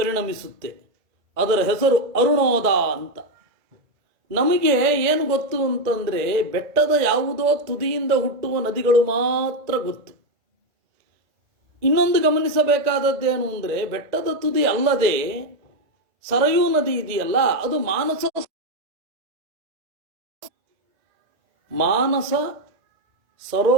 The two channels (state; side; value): late; left; 1.7 ms